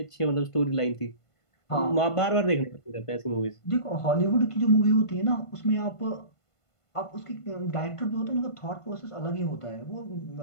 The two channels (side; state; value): right; late; 1.5 ms